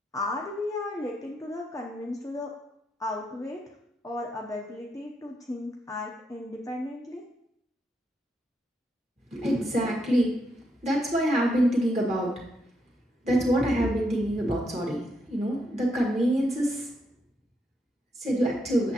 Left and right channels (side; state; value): both; normal; correlation 0.79